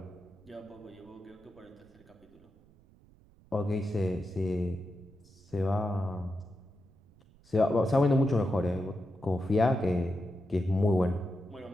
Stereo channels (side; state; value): right; noise; rumble, 27 dB below the sound